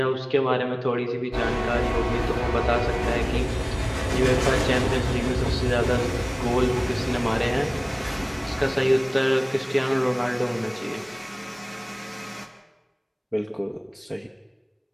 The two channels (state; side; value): identical; both; correlation 1.00